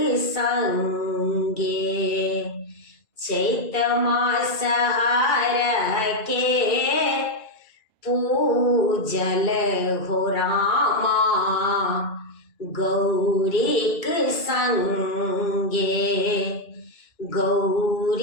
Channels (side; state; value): right; late; 2.4 ms